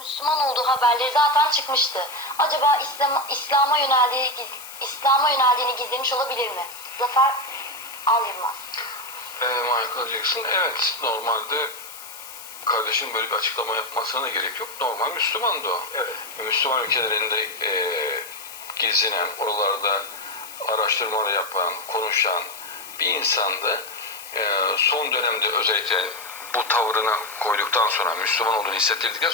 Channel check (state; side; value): noise; left; hiss, 14 dB below the sound